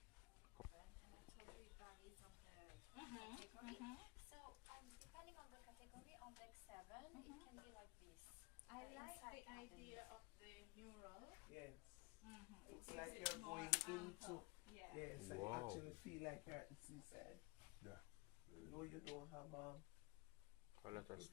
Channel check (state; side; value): quieter; right; 25.5 dB